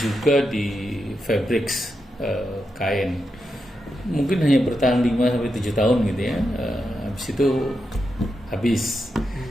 di fabrics, kain. Mungkin hanya bertahan 5-7 tahun gitu ya. Habis itu habis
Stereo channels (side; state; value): both; normal; correlation 0.86